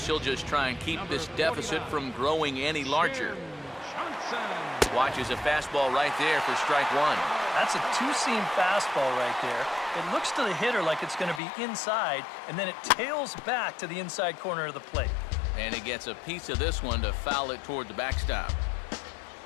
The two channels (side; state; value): right; drops out; at 11.4 s